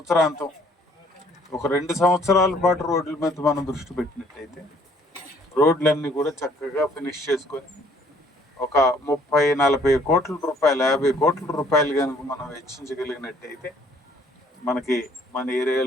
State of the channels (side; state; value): both; normal; correlation 0.60